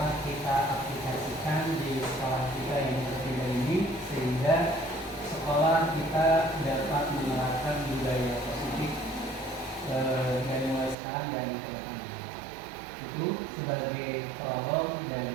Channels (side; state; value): left; drops out; at 11.0 s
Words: kita aplikasikan di sekolah kita yang berbeda ini, sehingga sekolah kita dapat menerapkan budaya positif dari mulai sekarang dan ke depan. Itu sebagai prolog,